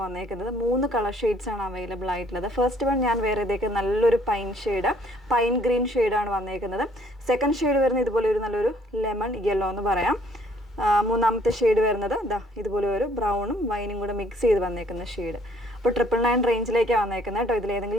വന്നേക്കുന്നത്. 3 കളർ ഷെയ്ഡ്സ് ആണ് അവൈലബിൾ ആയിട്ടുള്ളത്. ഫസ്റ്റ് വൺ ഞാൻ വേറെ ഇതൊക്കെ നല്ലൊരു പൈൻ ഗ്രീൻ ഷെയ്ഡാണ് വന്നേക്കുന്നത്. സെക്കൻഡ് ഷെയ്ഡ് വരുന്നത് ഇതുപോലെ ഒരു നല്ലൊരു ലെമൺ യെല്ലോ എന്ന് പറയാം. മൂന്നാമത്തെ ഷെയ്ഡ് വരുന്നത് ഇതുപോലെ ഒരു ബ്രൗണും വൈനും കൂടെ മിക്സ് ചെയ്ത് വന്നേക്കുന്ന ഷെയ്ഡ്. അപ്പോൾ 999 റേഞ്ചിലേക്കാണ് വന്നേക്കുന്നത് കേട്ടോ.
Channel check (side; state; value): both; normal; correlation 0.62